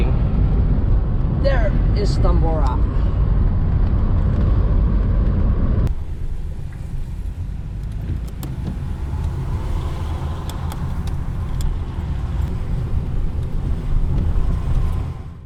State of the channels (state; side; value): identical; both; correlation 1.00